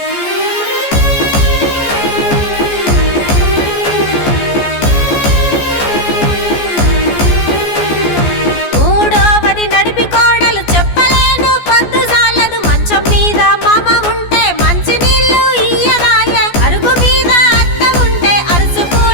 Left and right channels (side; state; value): right; late; 14 ms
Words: మూడోవది నడిపి కోడలు చెప్పలేను పొద్దు సాలదు మంచం మీద మామ ఉంటే మంచి నీళ్లు ఇయ్యరాయే అరుగు మీద అత్త ఉంటే